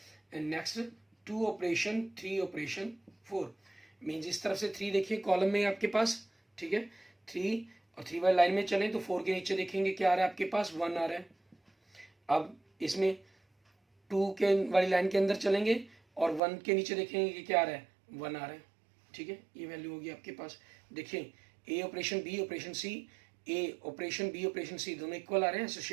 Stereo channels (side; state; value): left; drops out; at 16.4 s